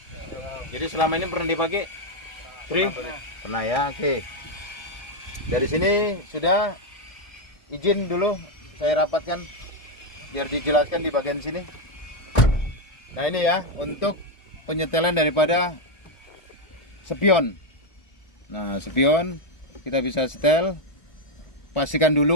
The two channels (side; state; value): right; late; 1.7 ms